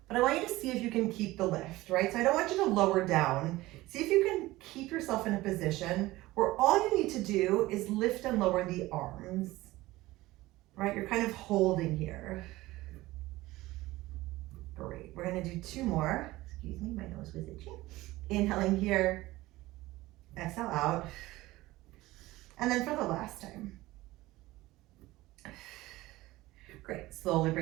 But I want you to see if you can keep the lift, right? So I don't want you to lower down. See if you can keep yourself in a position where all you need to do is lift and lower the arms, right? You're kind of holding here. Great, we're gonna do 2 more. Excuse me, my nose was itchy. Inhaling here, exhale out. And then for the last time. Great, slowly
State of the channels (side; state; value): left; quieter; 18.4 dB